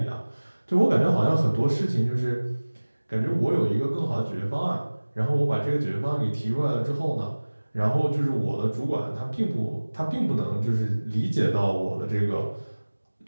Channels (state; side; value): inverted; both; correlation -1.00